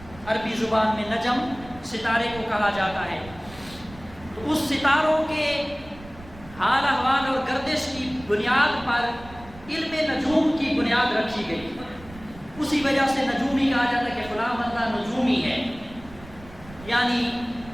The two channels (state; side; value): noise; right; rumble, 18 dB below the sound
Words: عربی زبان میں نجم ستارے کو کہا جاتا ہے۔ تو اس ستاروں کے حال احوال اور گردش کی بنیاد پر علم نجوم کی بنیاد رکھی گئی۔ اسی وجہ سے نجومی کہا جاتا ہے کہ فلاں بندہ نجومی ہے، یعنی